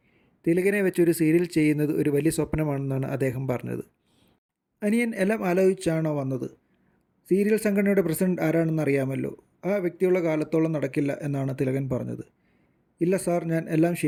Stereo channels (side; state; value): both; identical; correlation 1.00